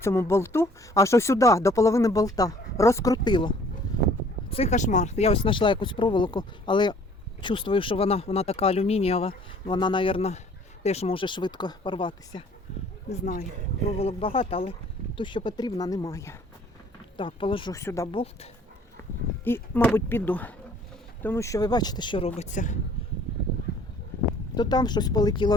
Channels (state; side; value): normal; both; correlation 0.55